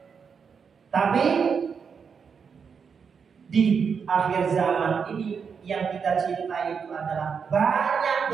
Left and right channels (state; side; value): quieter; left; 6.2 dB